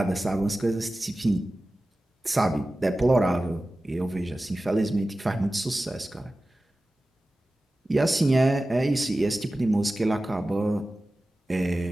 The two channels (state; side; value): normal; both; correlation 0.95